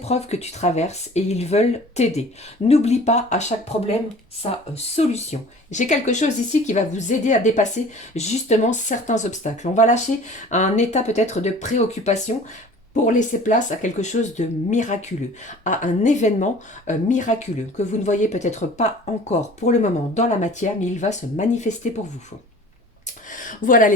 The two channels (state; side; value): normal; both; correlation 0.45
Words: que tu traverses et ils veulent t'aider. N'oublie pas à chaque problème sa solution. J'ai quelque chose ici qui va vous aider à dépasser justement certains obstacles. On va lâcher un état peut-être de préoccupation pour laisser place à quelque chose de miraculeux, à un événement miraculeux que vous ne voyez peut-être pas encore pour le moment dans la matière, mais il va se manifester pour vous. Voilà